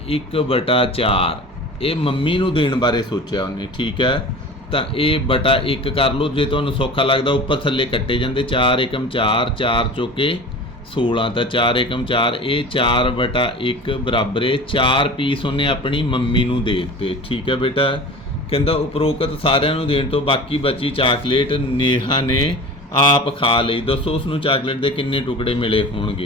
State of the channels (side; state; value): both; normal; correlation 0.37